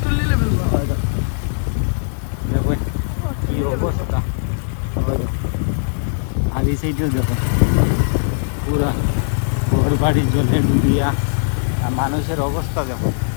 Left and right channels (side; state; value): right; silent; digital silence